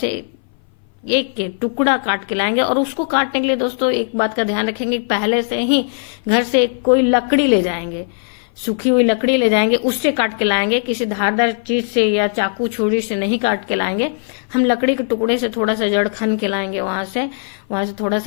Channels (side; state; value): right; silent; 59 dB below the other